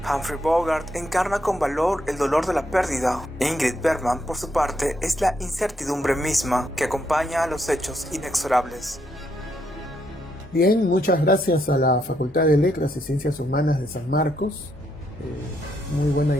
Humphrey Bogart encarna con valor el dolor de la pérdida. Ingrid Bergman, por su parte, es la incertidumbre misma que acompaña a los hechos inexorables. Bien, muchas gracias a la Facultad de Letras y Ciencias Humanas de San Marcos. Muy buena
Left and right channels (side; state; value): both; normal; correlation 0.76